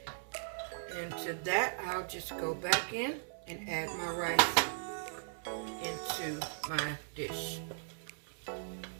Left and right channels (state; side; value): silent; left; digital silence